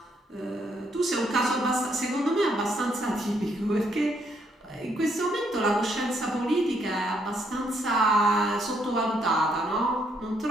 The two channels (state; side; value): normal; both; correlation 0.72